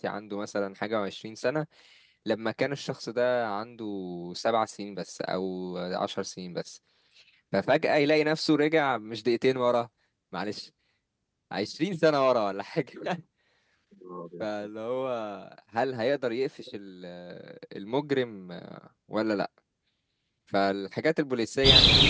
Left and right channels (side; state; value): both; identical; correlation 1.00